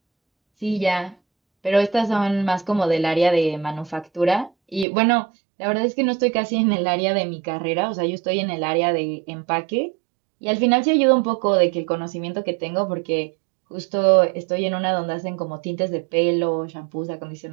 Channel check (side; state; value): left; drops out; at 4.9 s